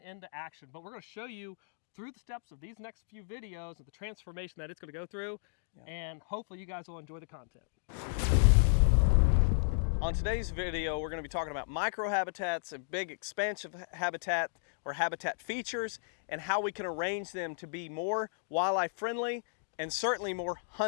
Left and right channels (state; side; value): silent; right; digital silence